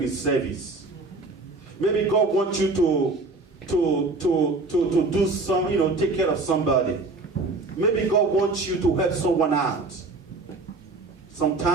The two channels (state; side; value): quieter; left; 3.4 dB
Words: in service. Maybe God wants you to do some, take care of somebody. Maybe God wants you to help someone out.